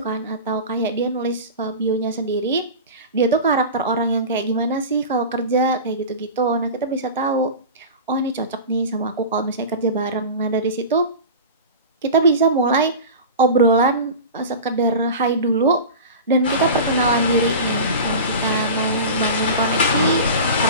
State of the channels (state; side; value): inverted; both; correlation -0.31